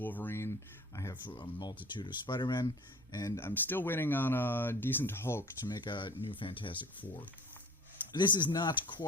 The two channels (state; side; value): normal; both; correlation 0.44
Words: I have a multitude of Spider-Men, and I'm still waiting on a decent Hulk to make a new Fantastic Four. This is not